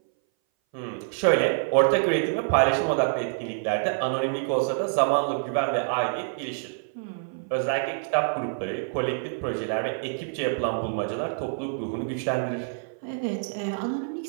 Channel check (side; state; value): left; silent; 59 dB below the other